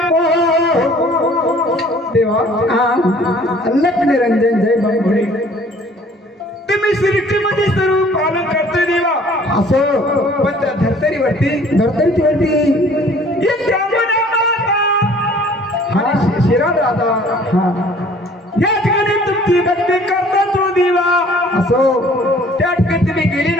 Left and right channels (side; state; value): both; normal; correlation 0.54